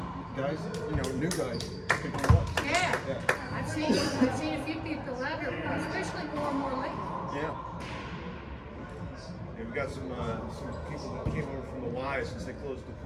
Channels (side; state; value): both; identical; correlation 1.00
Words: guys, new guys picking it up. Yeah. Yeah. I've seen a few people out here, especially more and more lately. Yeah. Yeah, we got some people that came over from the Y since they closed the